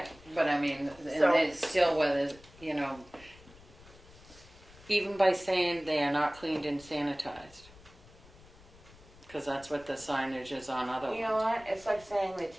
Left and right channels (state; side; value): noise; left; rumble, 23 dB below the sound